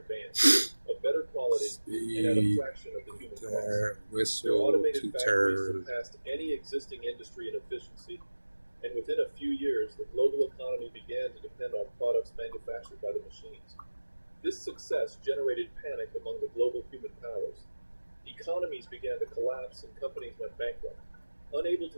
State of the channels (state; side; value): inverted; both; correlation -1.00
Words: of better quality, and at a fraction of the human cost. Whistle to turn. Surpassed any existing industry in efficiency, and within a few years, the global economy began to depend on products manufactured by the machines. This success generated panic among the global human powers. Economies began to collapse and companies went bankrupt, unable